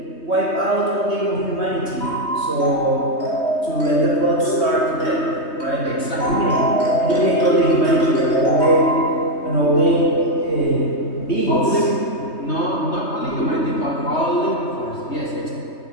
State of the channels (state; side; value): late; right; 3.2 ms